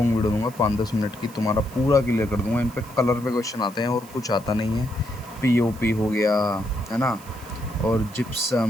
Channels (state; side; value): noise; right; hiss, 21 dB below the sound